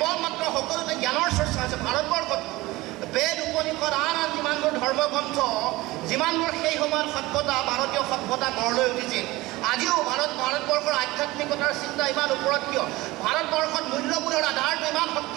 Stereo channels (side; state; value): left; quieter; 19.9 dB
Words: মাত্ৰ সকলোতে জ্ঞানৰ চৰ্চা হৈছে। ভাৰতবৰ্ষত বেদ উপনিষদ আন যিমানবোৰ ধৰ্মগ্ৰন্থ, যিমানবোৰ সেই সময়ত সভ্যতা, ভাৰতীয় সভ্যতা গঢ় লৈ উঠিছিল, আজিও ভাৰতবৰ্ষৰ আধ্যাত্মিকতাৰ চিন্তা ইমান ওপৰত কিয়? ভাৰতবৰ্ষত মূল্যবোধৰ আধাৰটো ইমান